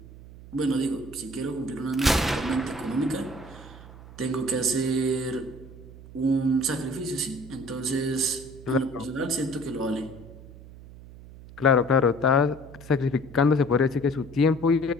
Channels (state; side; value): noise; right; hum, 17 dB below the sound